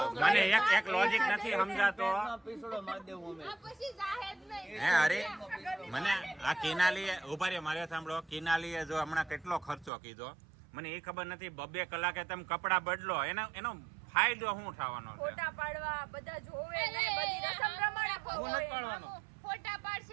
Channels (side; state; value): left; drops out; at 9.9 s